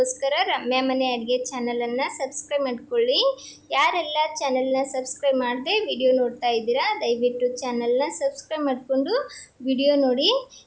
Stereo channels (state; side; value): identical; both; correlation 1.00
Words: ರಮ್ಯಾ ಮನೆ ಅಡುಗೆ ಚಾನಲನ್ನು ಸಬ್ಸ್ಕ್ರೈಬ್ ಮಾಡ್ಕೊಳ್ಳಿ. ಯಾರೆಲ್ಲ ಚಾನಲ್ನ ಸಬ್ಸ್ಕ್ರೈಬ್ ಮಾಡದೆ ವಿಡಿಯೋ ನೋಡ್ತಾ ಇದ್ದೀರಾ, ದಯವಿಟ್ಟು ಚಾನಲ್ನ ಸಬ್ಸ್ಕ್ರೈಬ್ ಮಾಡಿಕೊಂಡು ವಿಡಿಯೋ ನೋಡಿ.